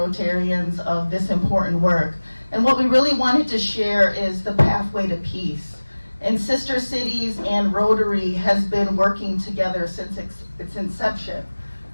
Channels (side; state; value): both; inverted; correlation -1.00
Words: of this important work. And what we really wanted to share is the pathway to peace. And Sister Cities and Rotary has been working together since its inception.